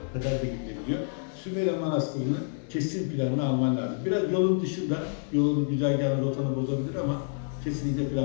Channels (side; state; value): right; silent; digital silence